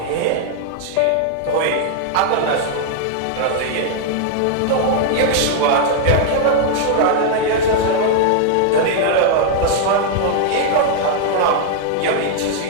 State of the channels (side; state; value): both; different; correlation -0.01